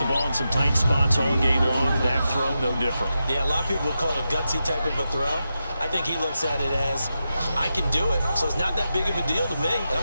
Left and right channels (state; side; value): inverted; both; correlation -0.89